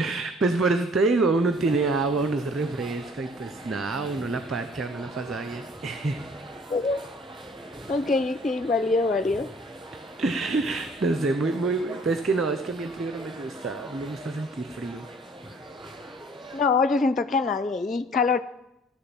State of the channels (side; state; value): both; normal; correlation 0.56